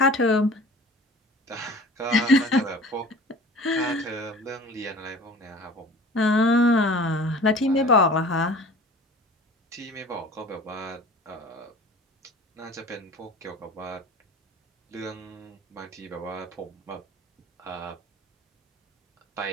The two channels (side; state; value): both; normal; correlation 0.43